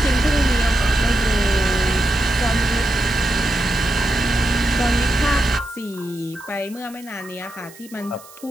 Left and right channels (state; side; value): noise; right; hiss, 21 dB below the sound